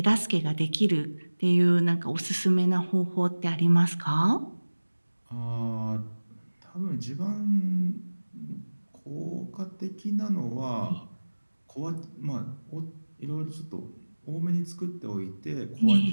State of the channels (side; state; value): both; inverted; correlation -1.00